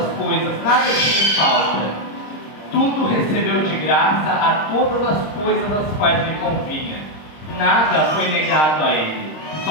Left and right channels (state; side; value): late; right; 26 ms